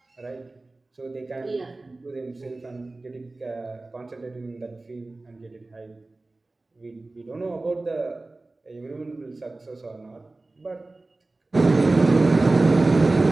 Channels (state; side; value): quieter; left; 3.1 dB